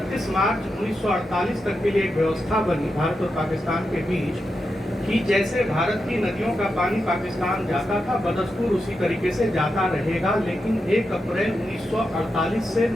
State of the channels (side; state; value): both; normal; correlation 0.87